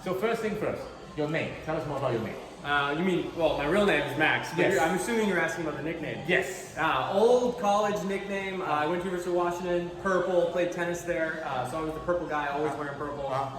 So first thing first, your name. Tell us more about your name. You mean, well, my real name is Max. But Yes. I'm assuming you're asking about the nickname. Yes. Old college nickname. I went to University of Washington, purple, played tennis there. So I was the purple guy, always wearing purple.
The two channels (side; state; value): both; identical; correlation 1.00